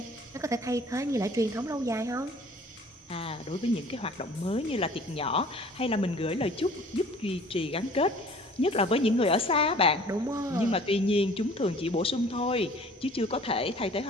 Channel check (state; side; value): normal; both; correlation 0.50